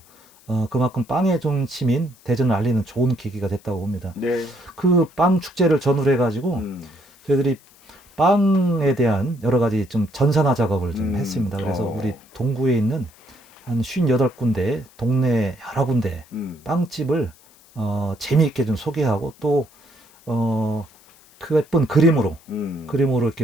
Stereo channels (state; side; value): noise; left; hiss, 28 dB below the sound